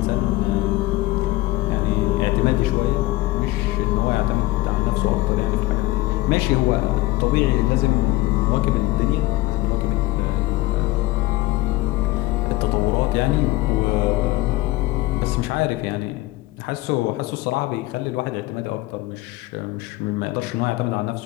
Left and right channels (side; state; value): right; quieter; 18.6 dB